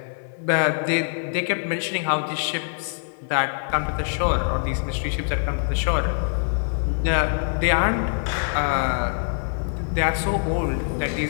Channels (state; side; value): silent; right; 63 dB below the other